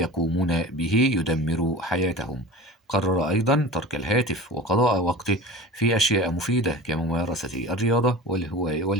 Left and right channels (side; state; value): both; normal; correlation 0.34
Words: به يدمر حياتهم. قرر أيضا ترك الهاتف وقضاء وقته في أشياء مفيدة كممارسة الرياضة